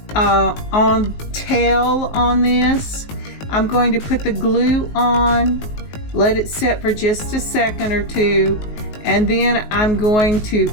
on tail on this. I'm going to put the glue on, let it set for just a second or two, and then I'm going to,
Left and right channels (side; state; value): right; late; 19 ms